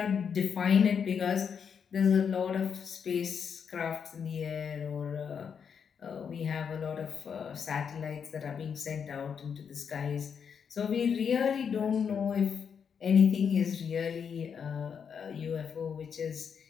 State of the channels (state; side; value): quieter; right; 6.9 dB